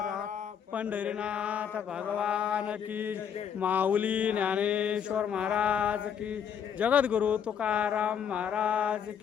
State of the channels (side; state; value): right; quieter; 8.0 dB